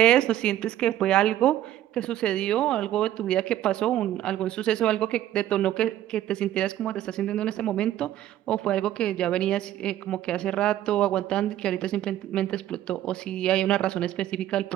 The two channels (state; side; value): quieter; left; 12.8 dB